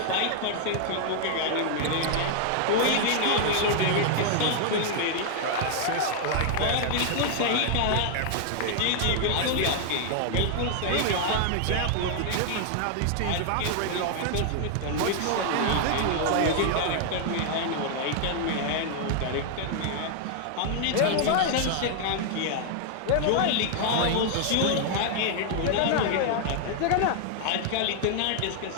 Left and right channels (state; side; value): different; both; correlation -0.01